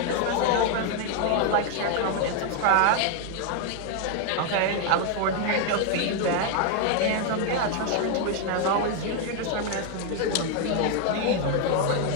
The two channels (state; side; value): different; both; correlation 0.00